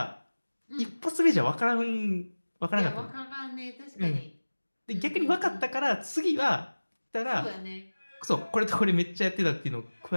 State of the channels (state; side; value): inverted; both; correlation -1.00